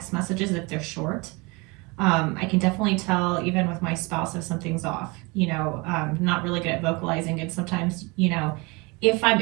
messages if they're short. I can definitely tell even with my spouse if something's off, not really good at vocalizing. And sometimes, if I'm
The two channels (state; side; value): quieter; left; 26.7 dB